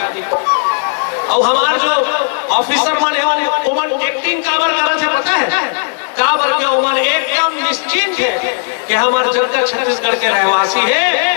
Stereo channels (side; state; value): right; silent; 61 dB below the other